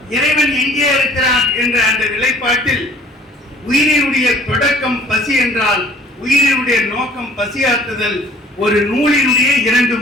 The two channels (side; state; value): both; normal; correlation 0.53